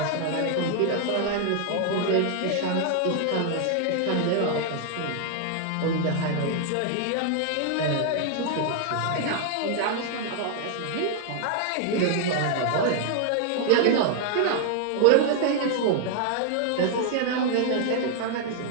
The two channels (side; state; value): both; different; correlation 0.00